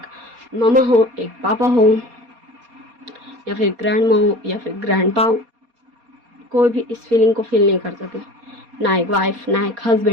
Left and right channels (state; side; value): late; left; 4.2 ms